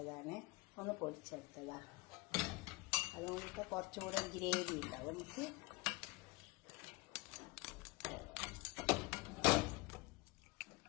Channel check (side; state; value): right; quieter; 24.2 dB